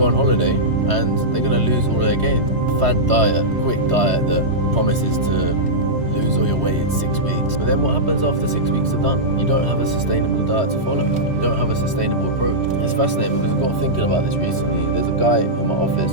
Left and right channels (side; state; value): left; late; 3.1 ms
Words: on holiday and they're going to lose all their gains. Fad diet, quick diet that promises to lose all your weight in 6 weeks. But then what happens after 6 weeks are done? You don't have a sustainable diet to follow. You don't have a sustainable approach. It's fascinating because I got thinking about this recently. There's a guy in my office